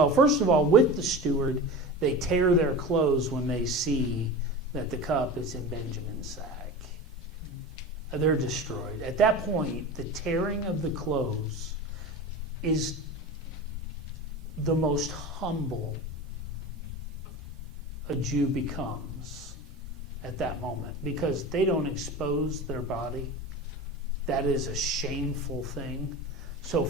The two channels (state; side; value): normal; both; correlation 0.30